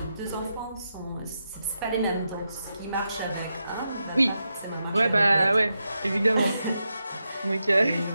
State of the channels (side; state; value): both; inverted; correlation -0.87